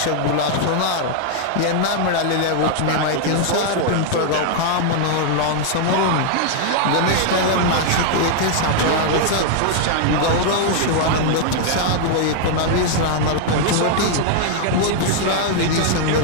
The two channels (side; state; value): both; different; correlation 0.00